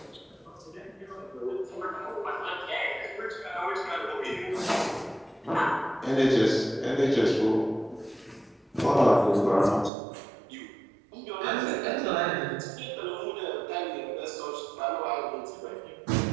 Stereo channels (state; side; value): drops out; left; at 9.9 s